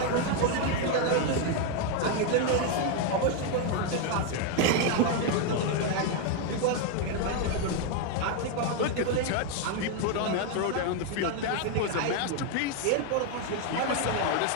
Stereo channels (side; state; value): both; different; correlation 0.01